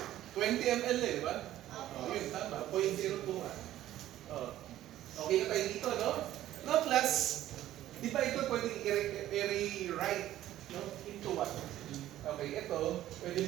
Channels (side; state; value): left; quieter; 13.5 dB